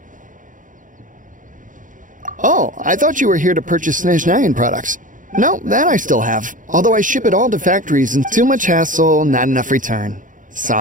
Oh, I thought you were here to purchase Snezhnayan products. No, that I still have. Although I ship it all to factories and too much hassle, not enough return.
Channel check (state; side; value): late; left; 0.38 ms